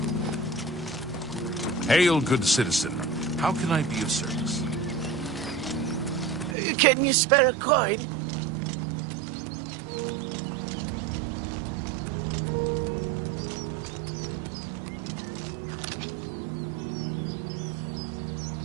Hail, good citizen. How can I be of service? Can you spare a coin?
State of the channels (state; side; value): drops out; left; at 6.6 s